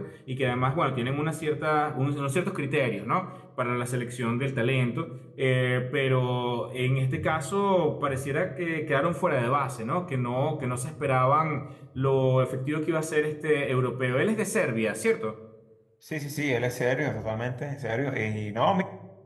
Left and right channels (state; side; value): identical; both; correlation 1.00